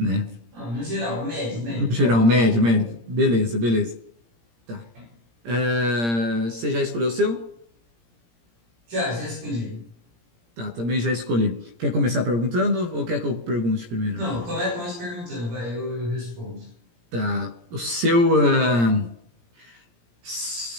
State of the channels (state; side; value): late; left; 17 ms